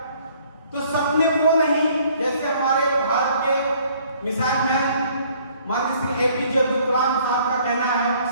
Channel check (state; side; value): inverted; both; correlation -0.59